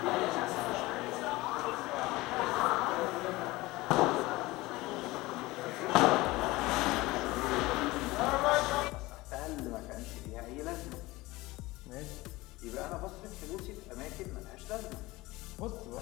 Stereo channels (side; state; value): right; quieter; 20.2 dB